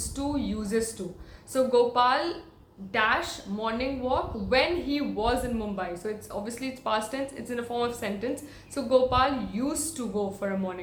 to, uses to. So Gopal dash morning walk when he was in Mumbai. So it's obviously it's past tense, it's in a form of sentence. So Gopal used to go for a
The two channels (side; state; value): both; identical; correlation 1.00